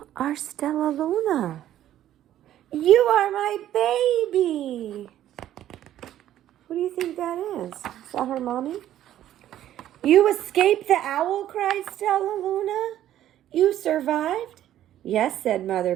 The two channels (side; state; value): left; quieter; 12.2 dB